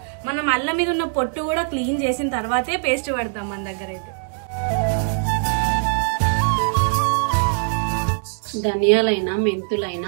మనం అల్లం మీద ఉన్న పొట్టు కూడా క్లీన్ చేసిన తర్వాతే పేస్ట్ పడతాం మన దగ్గర అయితే. ధనియాలైనా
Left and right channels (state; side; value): silent; left; 64 dB below the other